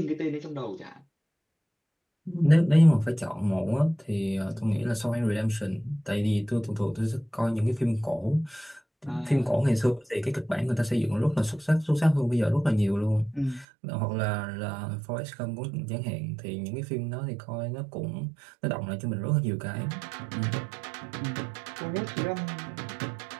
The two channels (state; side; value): drops out; left; at 13.7 s